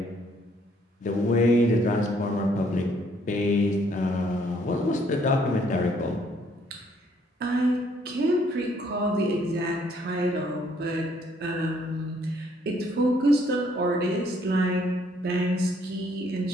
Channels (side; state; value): both; normal; correlation 0.66